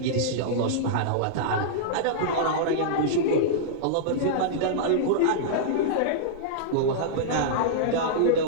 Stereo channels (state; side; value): different; both; correlation -0.03